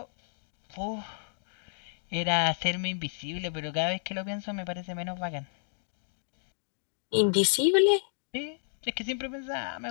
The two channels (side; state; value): right; silent; digital silence